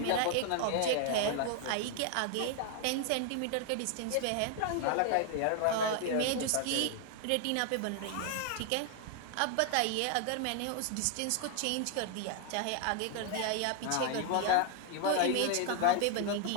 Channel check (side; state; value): both; different; correlation 0.00